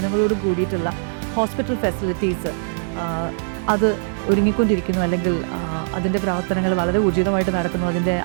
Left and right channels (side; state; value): left; silent; digital silence